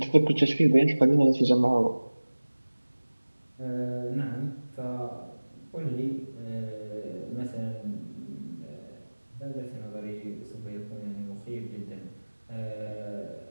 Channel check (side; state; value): both; inverted; correlation -1.00